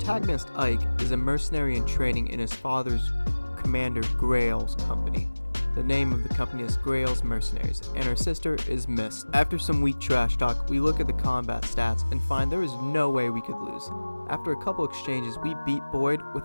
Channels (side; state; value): both; inverted; correlation -1.00